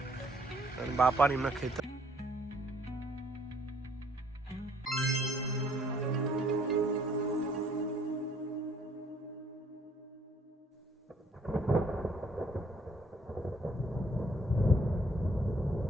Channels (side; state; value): both; normal; correlation 0.63